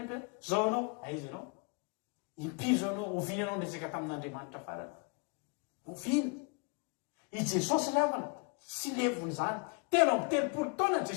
ampe zao anao aiza ianao impiry zao anao ovina anao nresaka tamin'Andriamanitra farany ovina i Jesosy riavana sy levony zany telo amby telopolo taona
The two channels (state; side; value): quieter; right; 33.0 dB